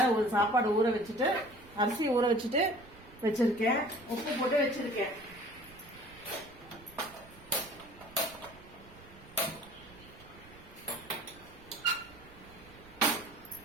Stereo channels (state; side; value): noise; right; rumble, 22 dB below the sound